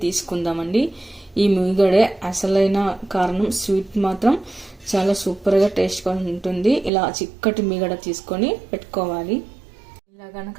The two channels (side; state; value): left; drops out; at 6.9 s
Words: తీసుకుందామండి. ఈ మీగడే అసలైన కారణం. స్వీట్ మాత్రం చాలా సూపర్గా టేస్ట్గా ఉంటుంది. ఇలా చిక్కటి మీగడ తీసుకొని పెట్టుకోవాలి. ఇలా